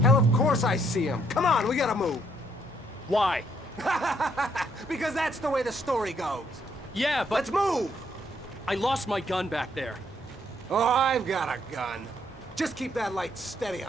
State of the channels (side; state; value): both; normal; correlation 0.70